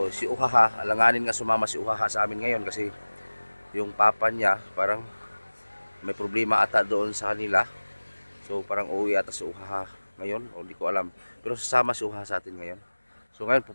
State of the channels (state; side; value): inverted; both; correlation -1.00